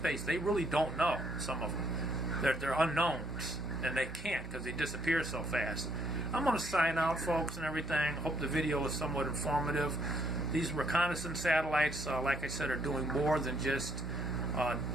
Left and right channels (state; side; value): normal; both; correlation 0.69